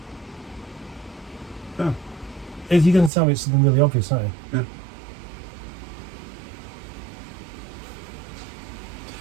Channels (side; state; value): left; drops out; at 3.1 s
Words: No. If you're going to tell me it's something really obvious, aren't you? Yeah.